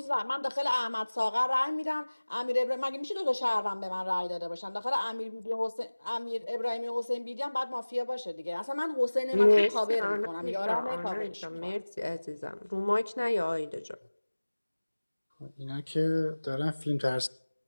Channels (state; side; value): inverted; both; correlation -1.00